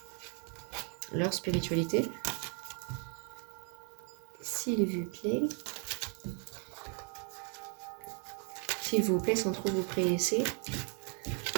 spiritualité? S'il vous plaît. S'il vous plaît, sans trop vous presser.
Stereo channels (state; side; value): quieter; left; 38.4 dB